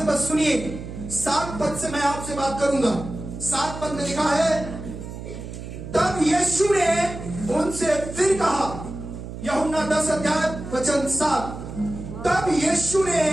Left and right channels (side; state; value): right; noise; hum, 10 dB below the sound